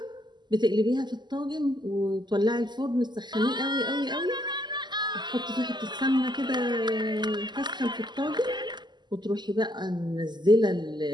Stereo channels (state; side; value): late; left; 0.21 ms